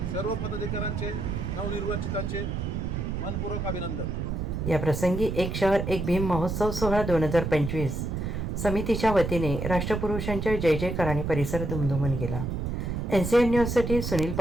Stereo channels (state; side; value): noise; right; rumble, 3 dB below the sound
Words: सर्व पदाधिकाऱ्यांचे नवनिर्वाचितांचे मनपूर्वक अभिनंदन. या प्रसंगी एक शहर एक भीम महोत्सव सोहळा 2025 समितीच्या वतीने राष्ट्रपुरुषांच्या जय जयकाराने परिसर दुमदुमून गेला. NCN न्यूजसाठी सुनील